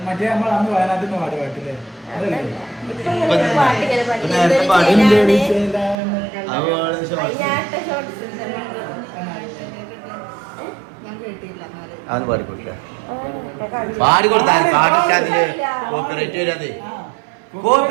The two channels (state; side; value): drops out; left; at 6.0 s